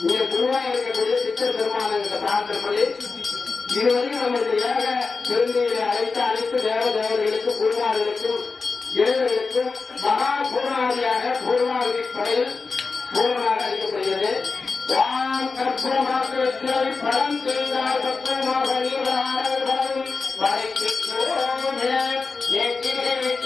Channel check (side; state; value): right; quieter; 4.4 dB